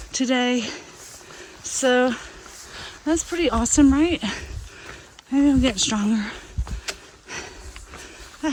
today. So that's pretty awesome, right? Maybe I'm getting stronger. I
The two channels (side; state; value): both; identical; correlation 1.00